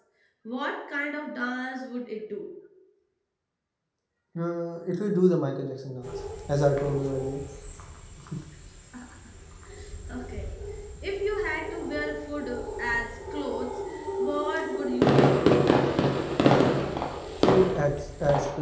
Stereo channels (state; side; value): identical; both; correlation 1.00